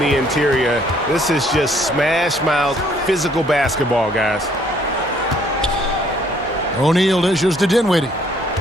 interior. This is just smash mouth physical basketball, guys. O'Neal dishes to Dinwiddie.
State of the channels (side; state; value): both; normal; correlation 0.63